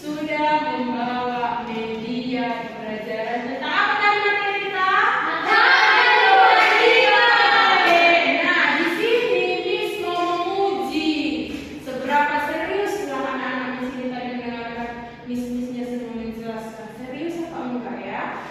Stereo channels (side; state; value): both; identical; correlation 1.00